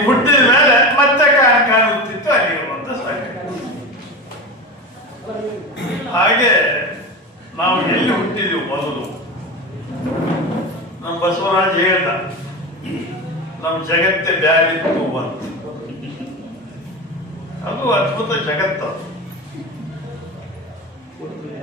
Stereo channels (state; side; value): normal; both; correlation 0.24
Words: ಹುಟ್ಟಿದ ಮೇಲೆ ಮತ್ತೆ ಕಾಣುತ್ತಿತ್ತು ಅಲ್ಲಿಗೆ ಒಂದು ಸಾಕಯ್ಯೋ. ಹಾಗೆ ನಾವು ಎಲ್ಲಿ ಹುಟ್ಟಿದೆವು ಮೊದಲು? ನಮ್ಮ ಬಸವರಾಜ್ ಹೇಳ್ದ, ನಮ್ಮ ಜಗತ್ತೇ ಬ್ಯಾರಿತ್ತು ಅಂತ. ಅದು ಅದ್ಭುತ ಜಗತ್ತು.